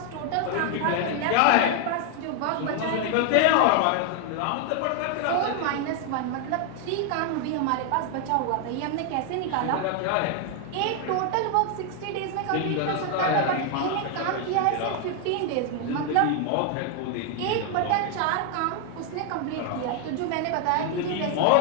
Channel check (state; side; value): different; both; correlation 0.00